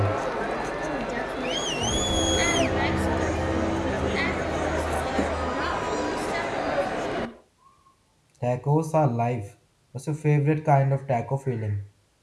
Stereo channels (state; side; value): identical; both; correlation 1.00